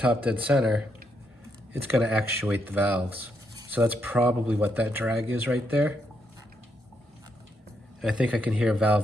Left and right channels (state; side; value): normal; both; correlation 0.78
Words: dead center, it's gonna actuate the valves. So that's probably what that drag is right there. And I think I can hear